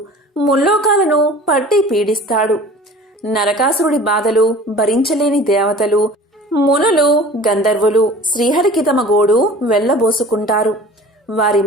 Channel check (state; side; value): normal; both; correlation 0.43